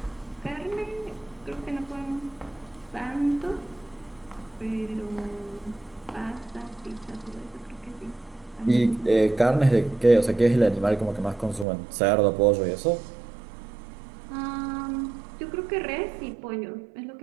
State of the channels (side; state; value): left; drops out; at 11.7 s